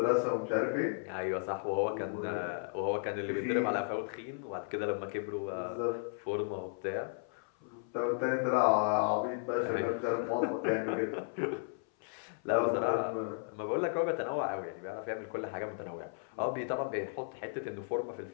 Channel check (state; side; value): silent; right; 55 dB below the other